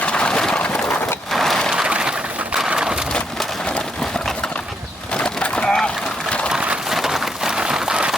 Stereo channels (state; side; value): normal; both; correlation 0.76